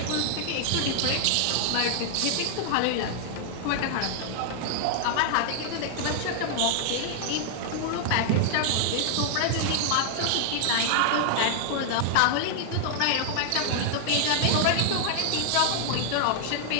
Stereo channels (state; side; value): different; both; correlation 0.00